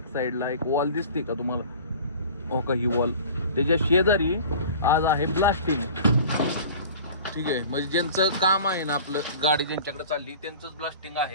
साईडला एक वॉल दिसते का तुम्हाला? हो का, ही वॉल त्याच्या शेजारी आज आहे ब्लास्टिंग. ठीक आहे, म्हणजे ज्यांचं काम आहे ना, आपलं गाडी ज्यांच्याकडे चालली त्यांचंच ब्लास्टिंग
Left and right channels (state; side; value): inverted; both; correlation -0.42